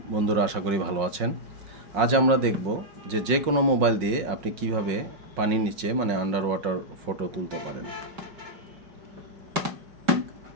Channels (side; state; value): left; late; 5.5 ms